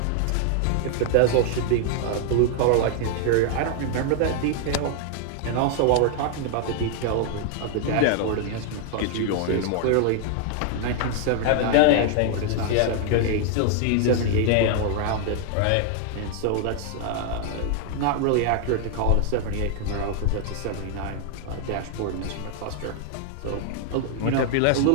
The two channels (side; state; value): both; different; correlation 0.00